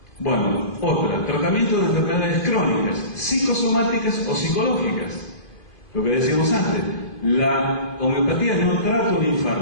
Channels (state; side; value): late; right; 2.5 ms